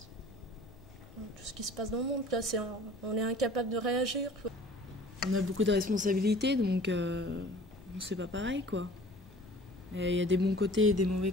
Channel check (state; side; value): normal; both; correlation 0.47